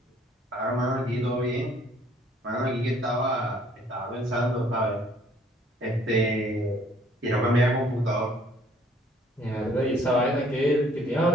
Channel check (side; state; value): both; normal; correlation 0.60